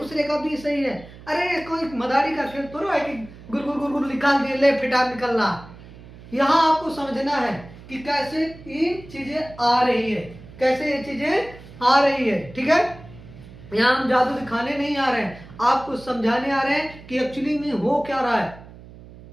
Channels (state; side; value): noise; right; hum, 18 dB below the sound